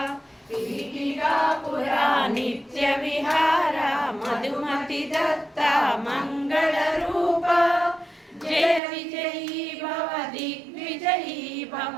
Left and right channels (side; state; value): left; drops out; at 8.8 s